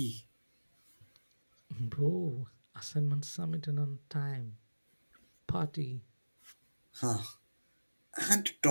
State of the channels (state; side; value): inverted; both; correlation -1.00